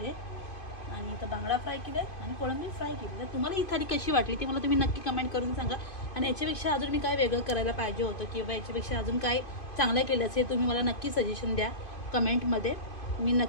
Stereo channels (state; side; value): late; right; 2.5 ms